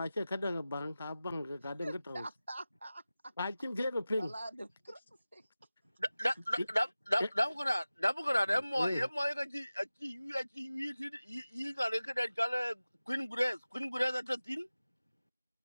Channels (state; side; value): inverted; both; correlation -0.97